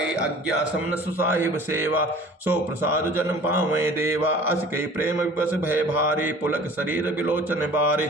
अज्ञा समन सुसाहिब सेवा सो प्रसाद जन पावे देवा अस कई प्रेम विवश भय भारी पुलक शरीर विलोचन बारे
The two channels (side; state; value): both; normal; correlation 0.46